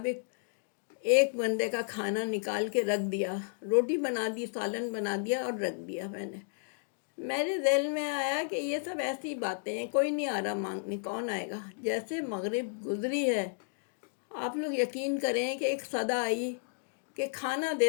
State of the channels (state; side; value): silent; right; digital silence